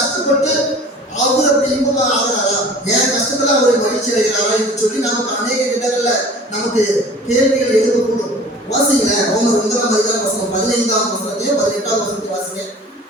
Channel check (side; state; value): both; normal; correlation 0.45